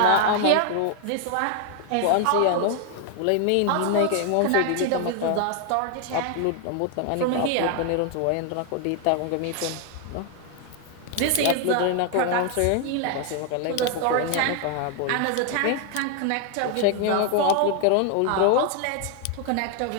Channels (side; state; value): both; different; correlation 0.00